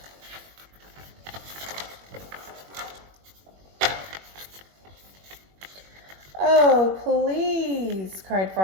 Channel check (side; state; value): left; late; 21 ms